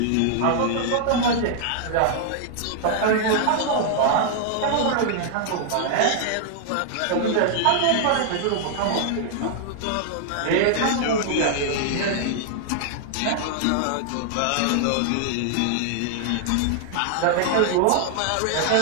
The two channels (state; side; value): different; both; correlation -0.01